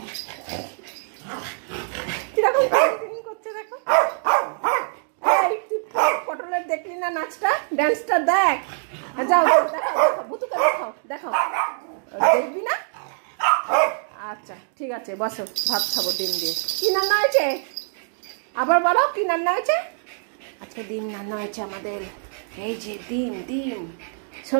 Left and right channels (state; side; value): silent; left; 63 dB below the other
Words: কিরকম করছে দেখো। পটলের দেখলি না নাচটা? ড্যান্সটা দেখ। যাও দেখাও, ভুতুকে দেখাও, দেখাও। দেখবি না? আচ্ছা ঠিক আছে, বসো, ভাত খাবো ডিম দিয়ে। কি রান্না হয়েছে? আবার বলো, কি রান্না হয়েছে? আজকে ডিম রান্না হয়েছে আমাদের। এই যে ডিম,